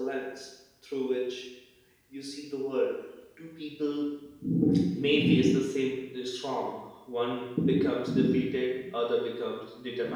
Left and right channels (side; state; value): both; identical; correlation 1.00